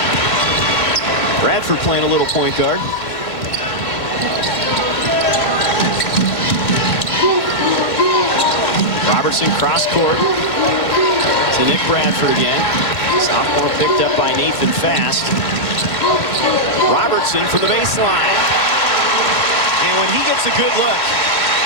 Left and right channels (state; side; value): late; right; 2.2 ms